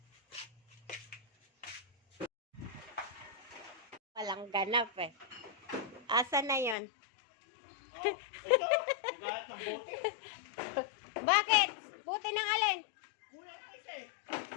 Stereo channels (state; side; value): drops out; right; at 6.8 s